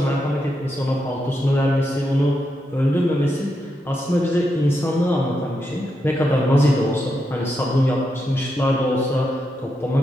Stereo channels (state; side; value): normal; both; correlation 0.84